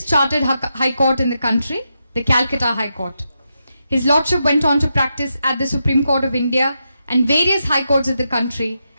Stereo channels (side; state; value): both; inverted; correlation -0.85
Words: chartered High Court in the country, the Calcutta High Court. His Lordship went on to practice at the Supreme Court of India and various High Courts of the country,